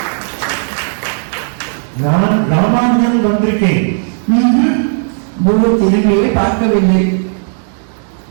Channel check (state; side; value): silent; left; 59 dB below the other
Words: நான் ராமானுஜன் வந்திருக்கேன். குரு திரும்பியே பார்க்கவில்லை.